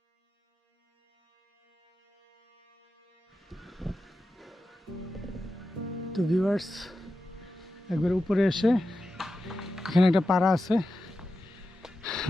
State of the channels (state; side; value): normal; both; correlation 0.91